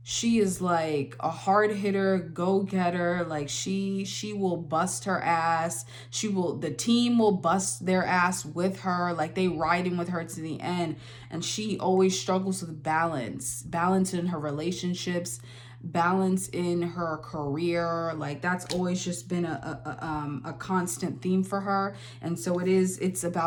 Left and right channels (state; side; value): identical; both; correlation 1.00